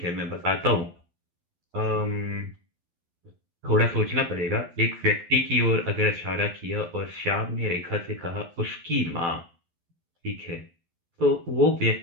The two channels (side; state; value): left; late; 12 ms